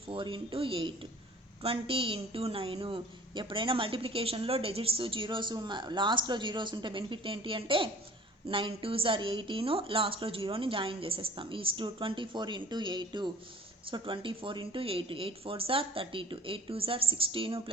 × 8. 20 × 9 ఎప్పుడైనా మల్టిప్లికేషన్లో డిజిట్స్ జీరోస్ లాస్ట్లో జీరోస్ ఉంటే బెనిఫిట్ ఏంటి అంటే 9 2s are 18, లాస్ట్లో జీరోని జాయిన్ చేసేస్తాం. Is to 24 × 8. So 24 × 8, 8 4s are 32, 8 2s are 16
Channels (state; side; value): normal; both; correlation 0.50